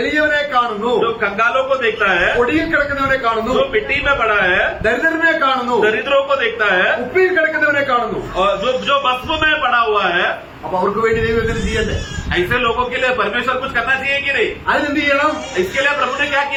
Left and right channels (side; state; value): both; identical; correlation 1.00